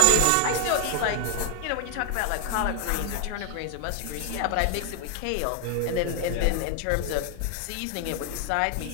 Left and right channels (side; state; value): both; different; correlation 0.01